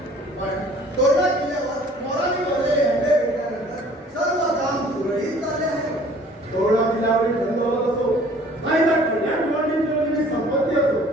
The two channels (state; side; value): normal; both; correlation 0.53